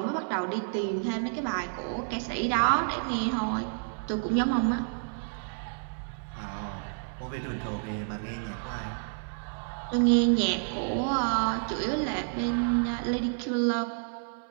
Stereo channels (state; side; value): silent; left; 58 dB below the other